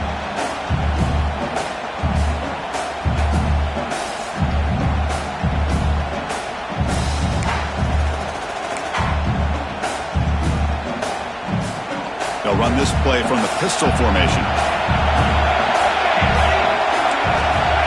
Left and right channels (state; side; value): identical; both; correlation 1.00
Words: They'll run this play from the pistol formation.